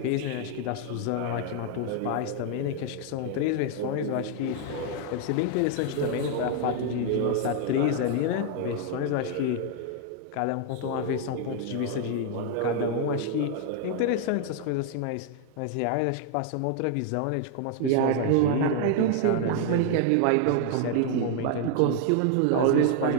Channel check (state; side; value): different; both; correlation 0.00